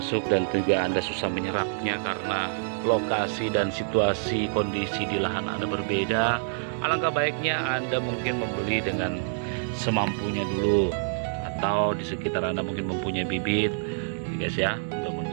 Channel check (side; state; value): left; silent; digital silence